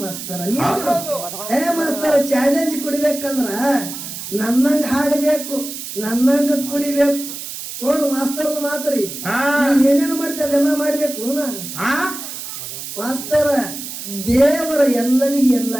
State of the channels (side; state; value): right; noise; hiss, 9 dB below the sound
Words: ಮಾಸ್ತರ. ಮಾಸ್ತರ ಚಾಲೆಂಜ್ ಕುಡಿಬೇಕಂದ್ರ ನನ್ನಂಗ ಹಾಡಬೇಕು, ನನ್ನಂಗ ಕುಡಿಬೇಕು. ನೋಡು ಮಾಸ್ತರದ ಮಾತ್ರಿ ಏನೇನು ಮಾಡ್ತೇವೆ ಅದೆಲ್ಲ ಮಾಡ್ಬೇಕು. ಮಾಸ್ತರ ದೇವರ ಎಲ್ಲರಿಗೂ